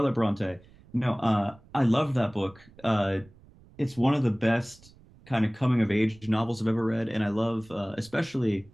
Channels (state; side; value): noise; right; rumble, 25 dB below the sound